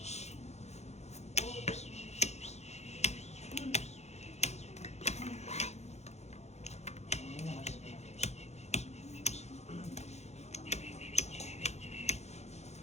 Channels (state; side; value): late; right; 0.32 ms